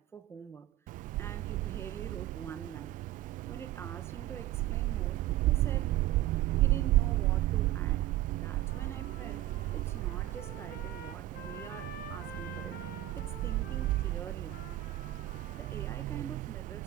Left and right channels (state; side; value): quieter; left; 14.8 dB